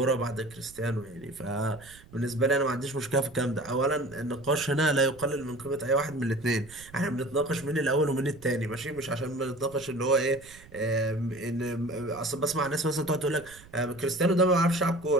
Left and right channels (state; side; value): noise; right; rumble, 22 dB below the sound